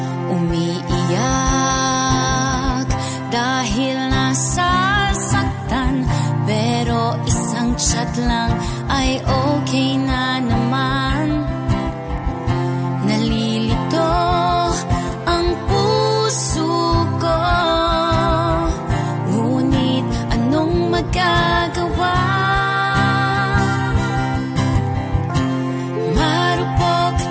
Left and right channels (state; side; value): identical; both; correlation 1.00